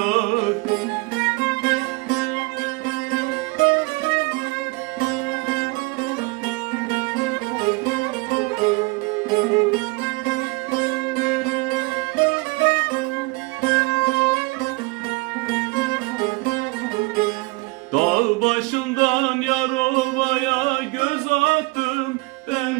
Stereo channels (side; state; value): left; quieter; 25.7 dB